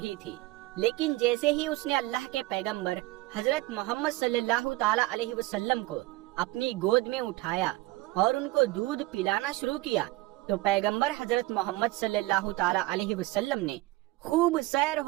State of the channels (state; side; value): quieter; left; 19.5 dB